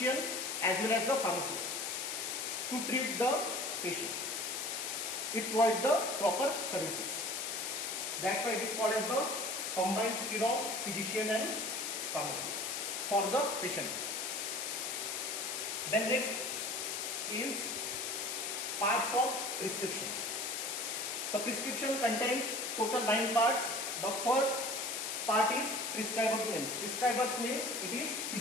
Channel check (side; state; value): left; noise; hiss, 3 dB below the sound